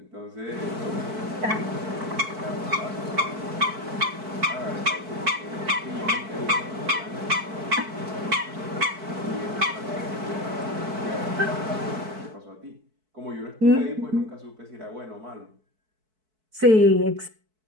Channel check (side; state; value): left; late; 4.6 ms